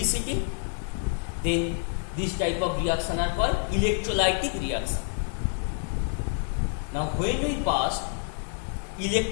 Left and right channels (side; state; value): right; silent; 58 dB below the other